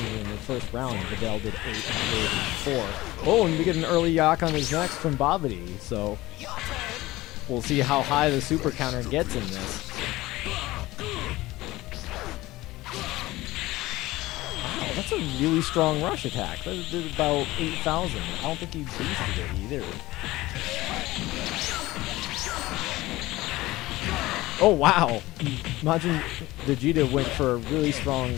even in the first round, Videl did 8 and Videl did 4. Oh, and we get an early yak on his next from Babidi, so we'll see how high the super counter gets in this. Wow, that's a really strong rush attack. That did about 8,000. I don't think he boosted it either. Oh wow! Majin Vegeta went for a really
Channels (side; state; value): right; quieter; 18.5 dB